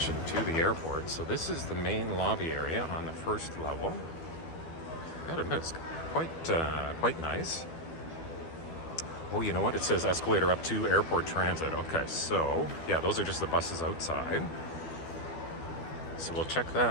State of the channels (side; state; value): right; late; 12 ms